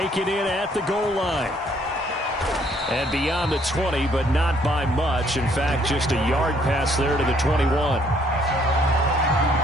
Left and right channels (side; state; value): both; normal; correlation 0.65